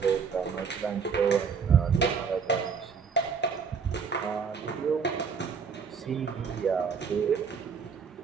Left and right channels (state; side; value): quieter; left; 6.0 dB